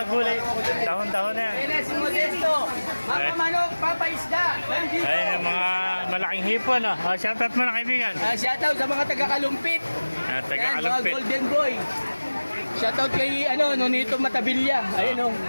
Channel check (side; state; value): both; inverted; correlation -1.00